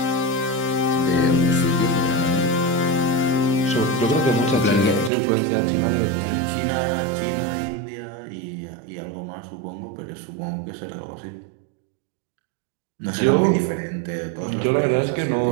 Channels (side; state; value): left; drops out; at 5.1 s